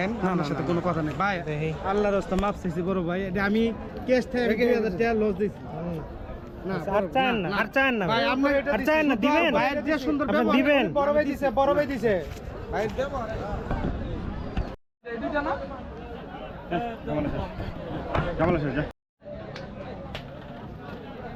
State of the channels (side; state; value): both; identical; correlation 1.00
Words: আমার সাথে কোনো কথা নেই ভাই আল্লাহর রাস্তা মাপ চাইছি বড় ভাই এটা আমি ক্যাশ থেকে 2000 টাকা লস দিছি না আর চান না আর চান না ভাই আপনি এটা আর চান না দিবেন ভাইয়ের যে সুন্দর আপনি ব্যবহার দিবেন বড় ভাই দিছে ভাই দেব এই দুইটা না কেমন আছে যা